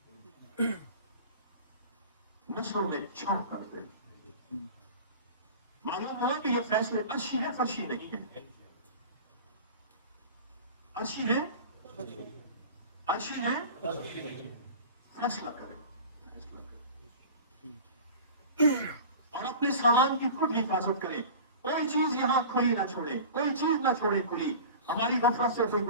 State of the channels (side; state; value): both; inverted; correlation -0.37